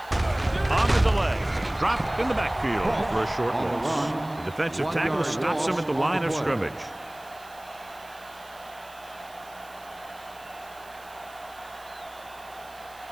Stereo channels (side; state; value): right; noise; hiss, 23 dB below the sound